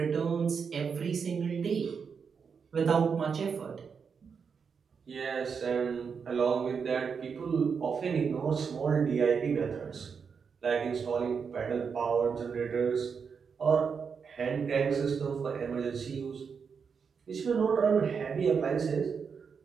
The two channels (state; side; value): quieter; left; 6.1 dB